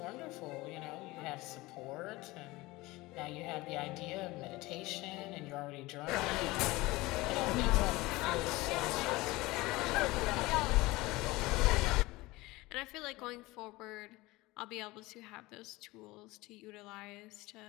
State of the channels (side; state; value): right; quieter; 20.7 dB